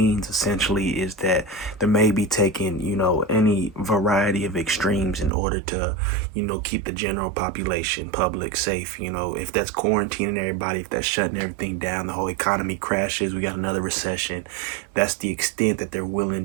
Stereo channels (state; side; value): drops out; left; at 5.3 s